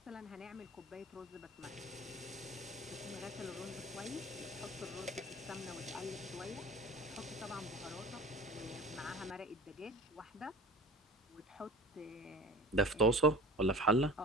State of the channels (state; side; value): normal; both; correlation 0.39